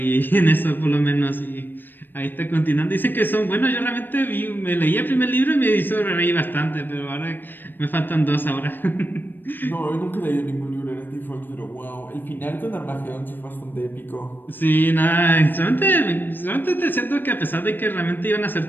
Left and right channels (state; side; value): late; right; 0.093 ms